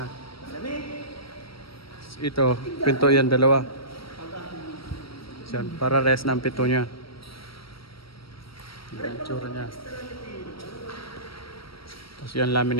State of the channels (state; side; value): late; right; 0.75 ms